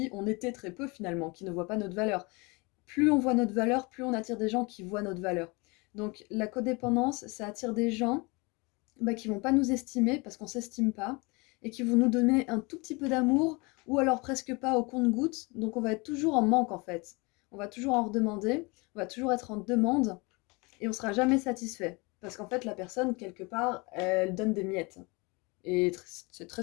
on était très peu finalement, qui ne voient pas notre valeur. Plus on voit notre valeur, plus on attire des gens qui voient notre valeur. Donc la codépendance, ça attire des gens bah, qui vont pas nous estimer parce qu'on s'estime pas et qui vont nous donner un tout petit peu d'amour ou alors presque pas au compte-gouttes. Donc on va être toujours en manque en fait. On va toujours en redemander, on va toujours être en demande et on sera jamais satisfait parce qu'en fait la personne quelque part elle donne des miettes. Et c'est très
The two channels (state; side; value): quieter; right; 27.5 dB